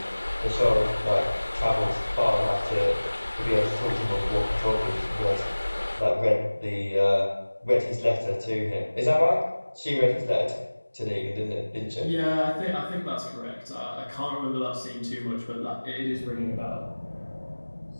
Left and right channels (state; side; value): inverted; both; correlation -1.00